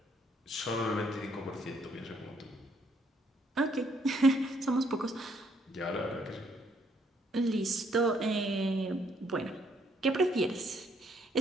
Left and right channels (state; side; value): normal; both; correlation 0.69